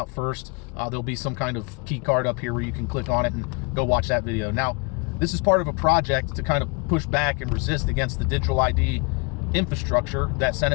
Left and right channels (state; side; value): quieter; right; 30.4 dB